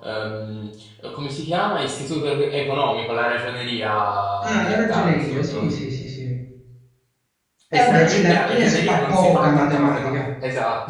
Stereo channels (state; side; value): identical; both; correlation 1.00